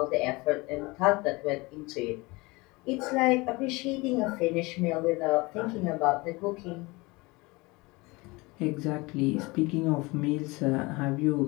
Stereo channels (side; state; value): right; quieter; 24.0 dB